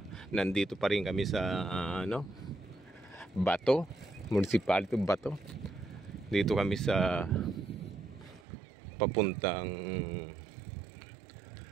nandito pa rin kami sa Bato, municipality Bato. Dito kami sa papuntang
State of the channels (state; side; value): drops out; left; at 8.5 s